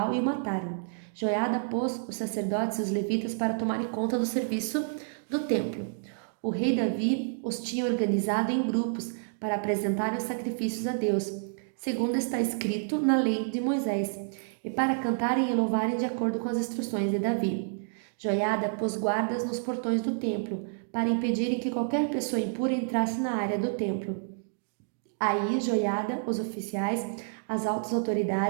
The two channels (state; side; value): silent; left; digital silence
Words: e o mataram. Joiada pôs os sacerdotes e os levitas para tomarem conta do serviço do templo. O rei Davi os tinha organizado em grupos para apresentarem os sacrifícios a Deus, segundo está escrito na lei de Moisés, e para cantarem e louvarem de acordo com as instruções de Davi. Joiada pôs guardas nos portões do templo, para impedirem que qualquer pessoa impura entrasse na área do templo. Aí Joiada, os oficiais, as altas